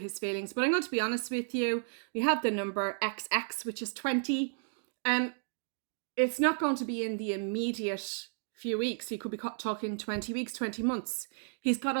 feelings. But I'm going to be honest with you. We have the number XX, which is 20. It's not going to be in the immediate few weeks. He could be talking 20 weeks, 20 months. He's got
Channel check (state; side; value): silent; left; digital silence